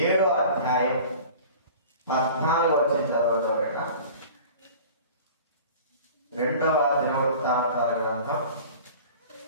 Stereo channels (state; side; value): inverted; both; correlation -0.42